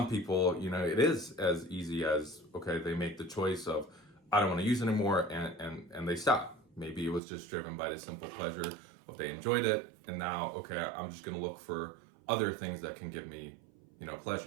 people, it is as easy as, okay, they make the choice of, I don't want to use it anymore, and they stop. Maybe it was just driven by the simple pleasure of they enjoyed it, and now, okay, I'm just going to look for other things that can give me,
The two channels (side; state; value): left; drops out; at 7.2 s